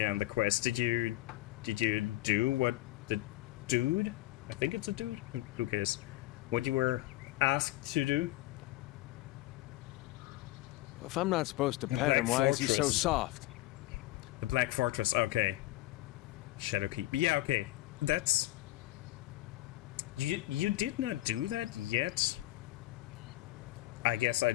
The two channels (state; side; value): quieter; right; 17.2 dB